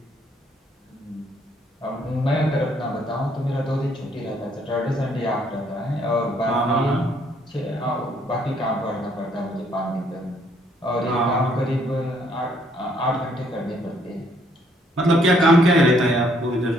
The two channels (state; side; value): normal; both; correlation 0.67